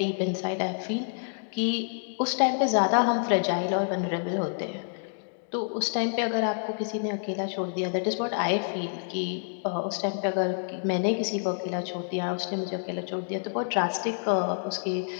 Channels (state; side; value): silent; right; digital silence